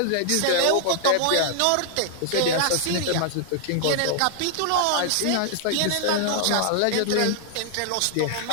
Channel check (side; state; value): both; different; correlation -0.01